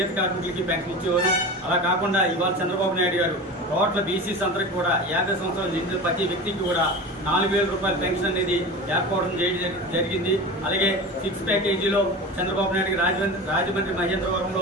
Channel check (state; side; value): normal; both; correlation 0.30